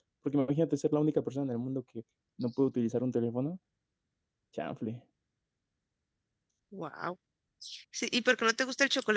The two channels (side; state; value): both; identical; correlation 1.00